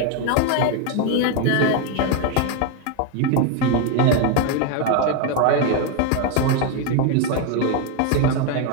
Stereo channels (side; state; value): both; different; correlation 0.01